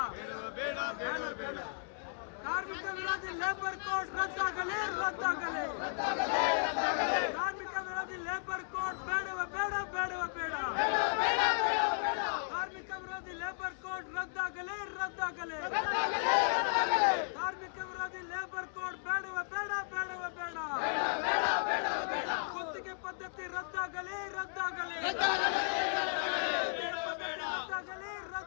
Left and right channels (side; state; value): right; silent; digital silence